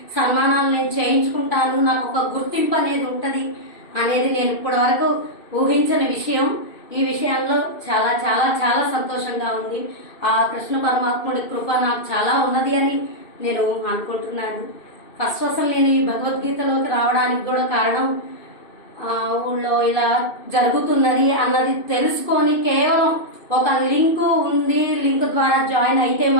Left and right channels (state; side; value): late; right; 2.6 ms